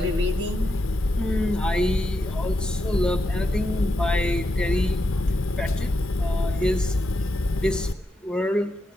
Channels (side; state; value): both; normal; correlation 0.85